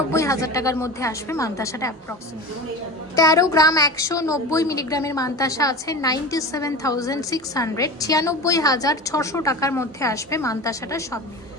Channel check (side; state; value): both; normal; correlation 0.30